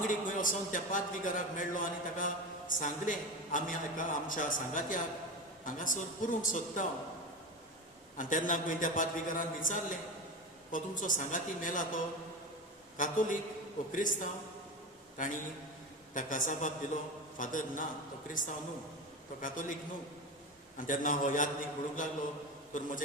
खंय वचोन त्या पाद्रीगाराक मेळ्ळो आनी ताका सांगलें, आमी आमच्या सांगात्याक हांगासर पुरूंक सोदता. आनी तेन्ना खंय त्या पाद्रीगारान विचारलें, हो तुमचो सांगाती मेला तो कातोलीक वो क्रिस्तांव? तांणी ताका जबाब दिलो, फादर ना, तो क्रिस्तांव न्हू, तो कातोलीक न्हू. आनी तेन्ना हो यादनीक म्हणूंक लागलो, तर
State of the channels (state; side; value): normal; both; correlation 0.23